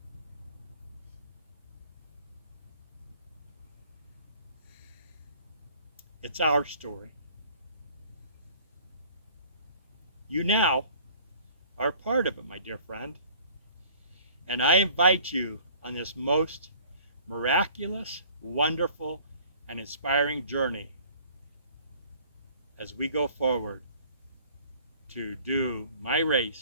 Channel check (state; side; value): inverted; both; correlation -0.53